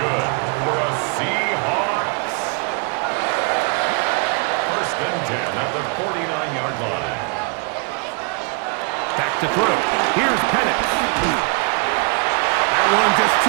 good for a Seahawks. First and 10 at the 49-yard line. Back to throw. Here's Penix. That one just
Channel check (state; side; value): quieter; left; 35.1 dB